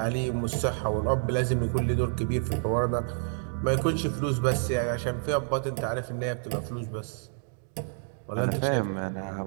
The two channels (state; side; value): silent; left; digital silence